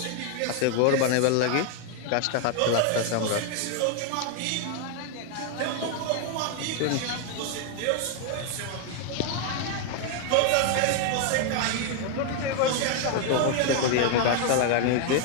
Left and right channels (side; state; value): both; different; correlation 0.01